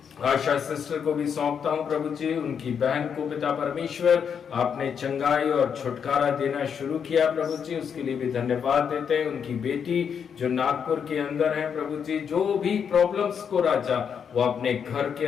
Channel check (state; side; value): quieter; right; 7.3 dB